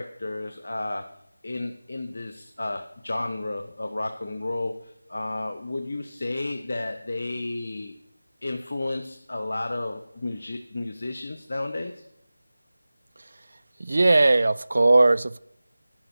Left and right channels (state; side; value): inverted; both; correlation -0.97